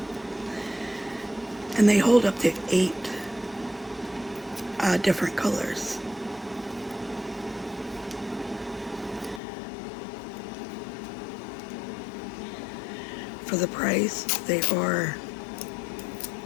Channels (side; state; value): right; drops out; at 9.4 s